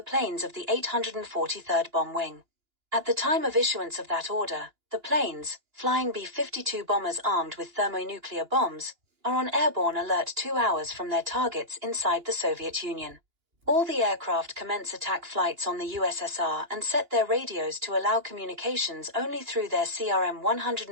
of the 843rd Bomb Wing. At the time of issuance of that order, the planes, flying B-52 bombers armed with thermonuclear bombs, are on airborne alert 2 hours from their targets inside the Soviet Union. All the aircraft commence attack flights on the USSR and set their radios to allow communications only through their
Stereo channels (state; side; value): late; left; 2.9 ms